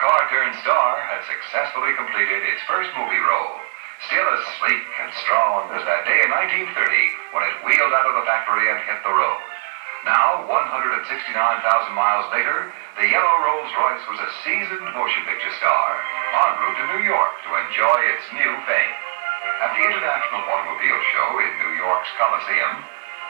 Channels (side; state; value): left; silent; 61 dB below the other